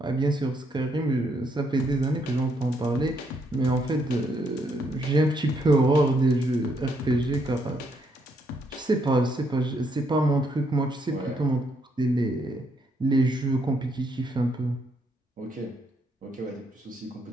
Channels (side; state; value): both; normal; correlation 0.74